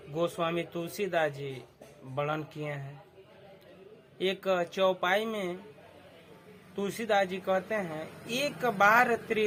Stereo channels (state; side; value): identical; both; correlation 1.00